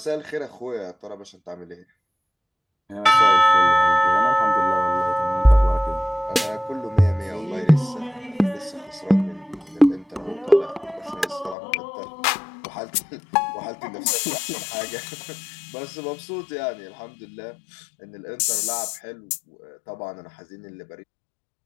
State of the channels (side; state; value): right; drops out; at 11.6 s